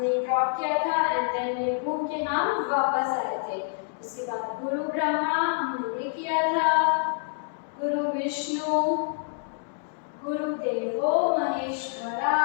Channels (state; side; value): silent; right; digital silence